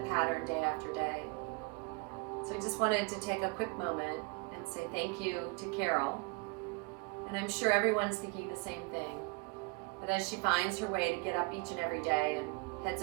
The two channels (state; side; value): quieter; left; 30.8 dB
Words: pattern day after day. So I just wanted to take a quick moment and say thank you to Carol. And I'm sure everyone's thinking the same thing, that as she finds her way to get up each and every day and heads